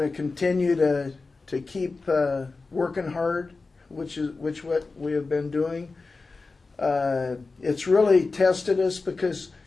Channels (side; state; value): right; quieter; 3.9 dB